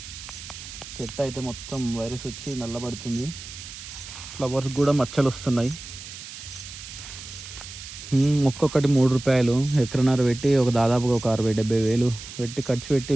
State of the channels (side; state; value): right; noise; hiss, 13 dB below the sound